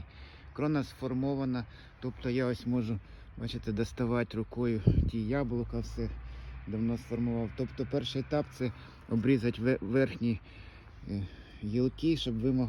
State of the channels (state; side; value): identical; both; correlation 1.00